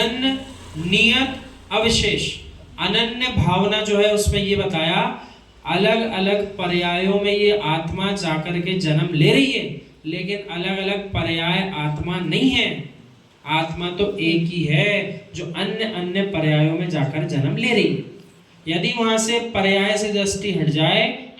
नियत, अविशेष। अनन्य भावना जो है उसमें ये बताया, अलग अलग पर्यायों में ये आत्मा जाकर के जन्म ले रही है, लेकिन अलग अलग पर्याय आत्मा नहीं है। आत्मा तो एक ही है जो अन्य अन्य पर्यायों में जाकर जन्म ले रही है। यदि वहां से पर्याय से दृष्टि हट जाए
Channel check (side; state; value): both; identical; correlation 1.00